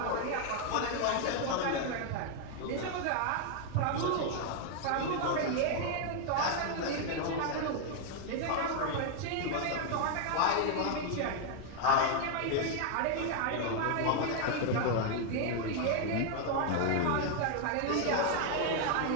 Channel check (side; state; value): both; different; correlation 0.00